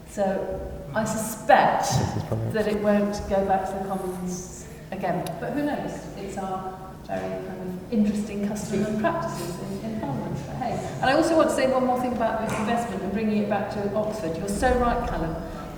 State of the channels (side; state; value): both; identical; correlation 1.00